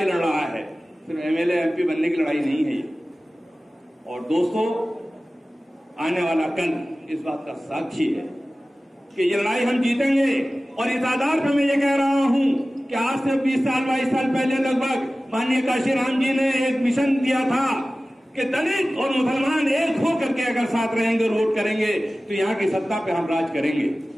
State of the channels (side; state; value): both; normal; correlation 0.97